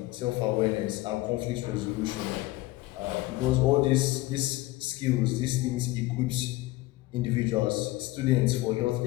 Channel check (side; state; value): right; quieter; 18.7 dB